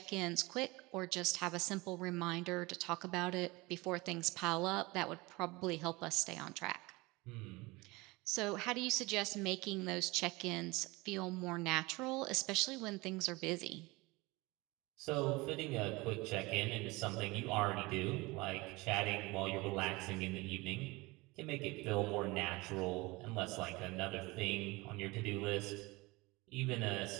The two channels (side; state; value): left; quieter; 23.1 dB